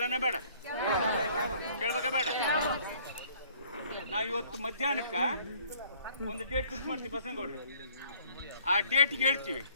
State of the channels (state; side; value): inverted; both; correlation -0.58